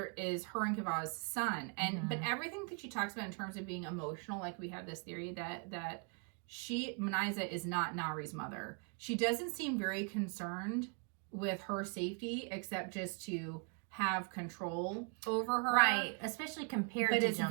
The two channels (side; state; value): left; quieter; 37.7 dB